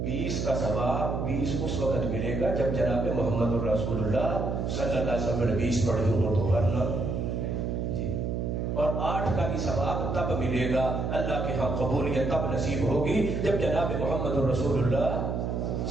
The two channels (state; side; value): noise; right; hum, 1 dB below the sound